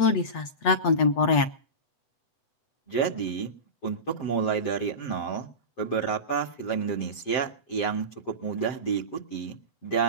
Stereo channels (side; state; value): right; late; 8.2 ms